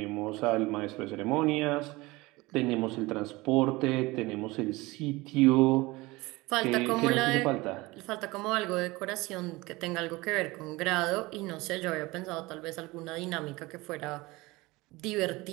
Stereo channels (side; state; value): left; quieter; 21.7 dB